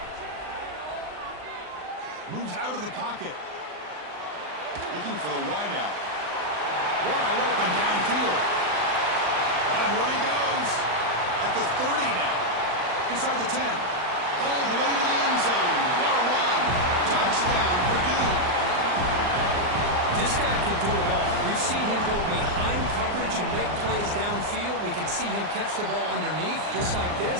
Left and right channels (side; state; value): left; late; 39 ms